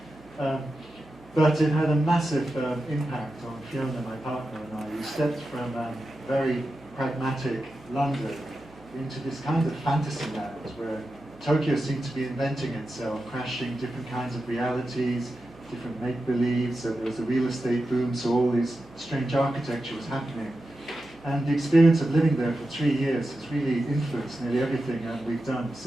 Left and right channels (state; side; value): noise; right; hum, 25 dB below the sound